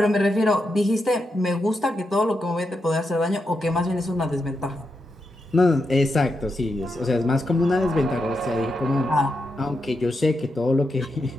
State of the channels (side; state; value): both; normal; correlation 0.85